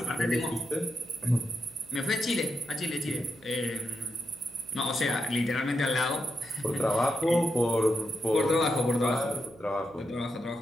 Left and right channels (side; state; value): right; noise; hum, 25 dB below the sound